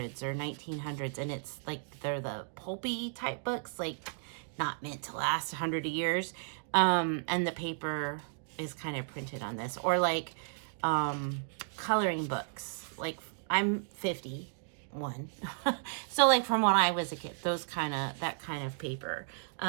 or 1900s, and it's like they're the pulpy type books, like not meant to last 100 years, and the paper is kind of printed on this, or like coloring books. Like I'm 51, so like from when I was a kid, that kind of paper.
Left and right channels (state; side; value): silent; left; digital silence